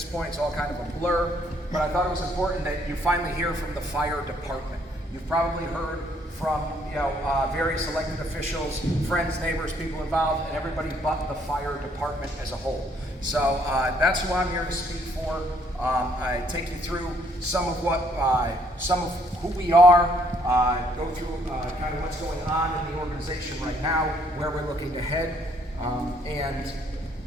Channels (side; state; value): both; normal; correlation 0.67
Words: point. It's all kind of a blur. But I thought it was important that you finally hear from the fire department. You've probably heard from various elected officials, friends, neighbors, people involved, and everybody but the fire department as a whole. So that's who I'm here to speak for. I take you through some of who we are, go through kind of what's going on in the organization right now, where we're looking to head, and